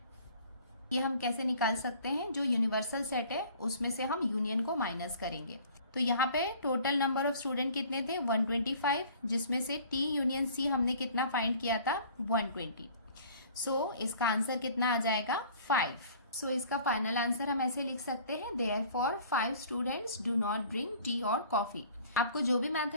ये हम कैसे निकाल सकते हैं, जो यूनिवर्सल सेट है उसमें से हम यूनियन को माइनस करेंगे। तो यहाँ पे टोटल नंबर ऑफ स्टूडेंट कितने थे 125, जिसमें से टी यूनियन सी हमने कितना फाइंड किया था 120। सो इसका आंसर कितना आ जाएगा 5। सो इसका फाइनल आंसर हम ऐसे लिख सकते हैं therefore 5 students do not drink tea और कॉफी। आपको जो भी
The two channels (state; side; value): inverted; both; correlation -0.50